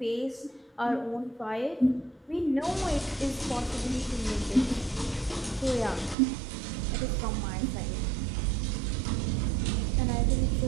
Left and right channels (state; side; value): drops out; left; at 6.2 s